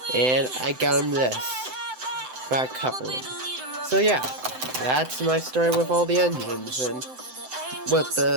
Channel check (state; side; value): late; left; 7.8 ms